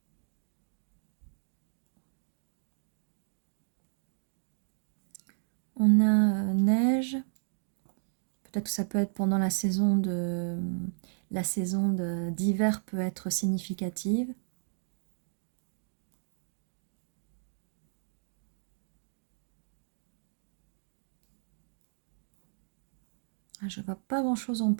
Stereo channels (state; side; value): silent; left; digital silence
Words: On a neige. Peut-être que ça peut être pendant la saison d'hiver peut être significative. Je ne vois pas grand-chose en